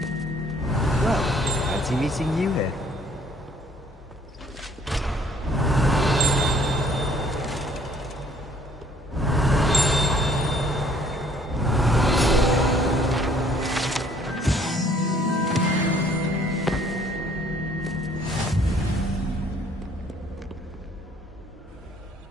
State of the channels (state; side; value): normal; both; correlation 0.60